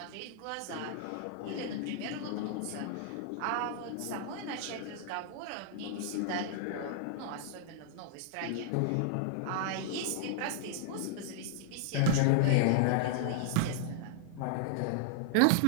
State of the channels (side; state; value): both; different; correlation -0.01